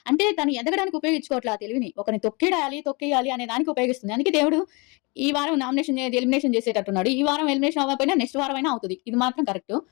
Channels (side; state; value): right; quieter; 29.0 dB